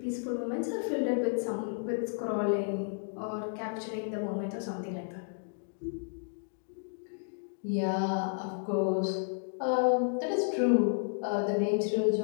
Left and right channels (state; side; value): silent; right; digital silence